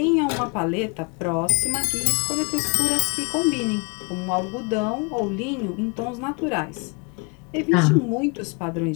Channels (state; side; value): quieter; right; 32.4 dB